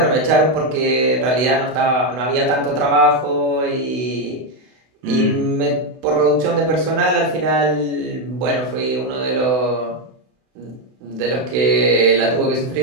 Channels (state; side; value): late; left; 32 ms